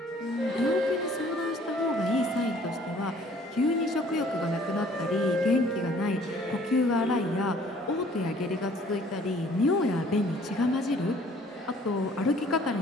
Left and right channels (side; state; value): both; normal; correlation 0.56